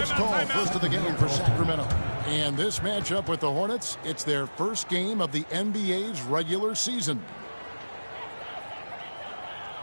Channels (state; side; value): inverted; both; correlation -1.00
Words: is called. First of the game for Sacramento. And this matchup with the Hornets, it's their first game of the NBA's regular season.